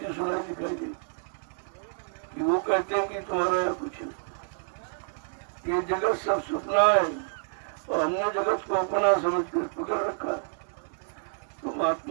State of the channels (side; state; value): left; silent; 59 dB below the other